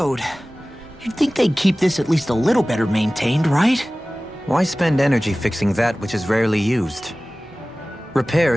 You'd think they'd keep this at least a little better maintained, right? Why spend energy fixing that which is rarely used?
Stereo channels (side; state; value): both; normal; correlation 0.97